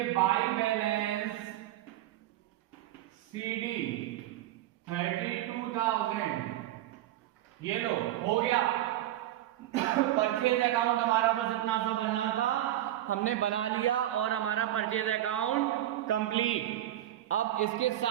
बाई बैलेंस सीडी 32,000। ये लो हो गया परचेज अकाउंट हमारा, बस इतना सा बनना था, हमने बना लिया और हमारा परचेज अकाउंट कंप्लीट। अब इसके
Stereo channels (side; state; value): left; quieter; 13.6 dB